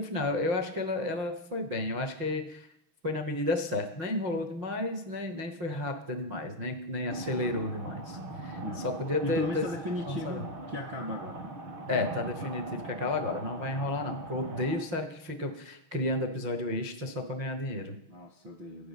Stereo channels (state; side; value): late; left; 6.3 ms